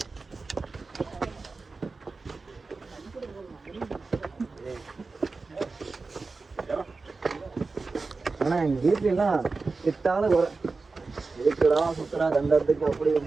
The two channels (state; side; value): quieter; left; 4.0 dB